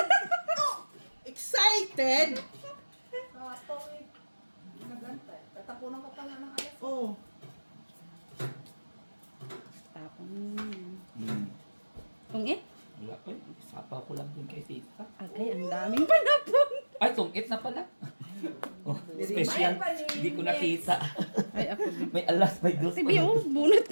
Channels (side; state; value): both; inverted; correlation -1.00